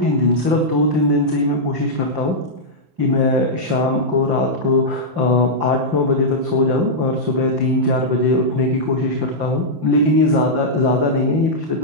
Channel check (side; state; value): left; late; 5.8 ms